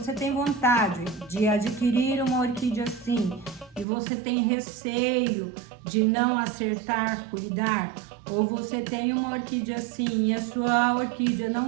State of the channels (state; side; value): drops out; left; at 3.9 s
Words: de adquirir uma orquídea assim e você tem receio de não acertar, cuidar? Ou você tem uma orquídea assim e a sua orquídea